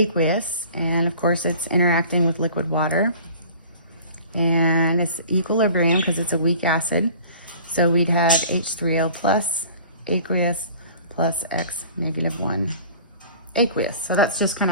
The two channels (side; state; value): both; inverted; correlation -0.46